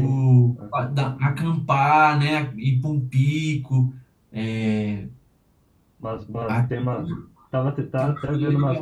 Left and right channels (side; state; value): both; identical; correlation 1.00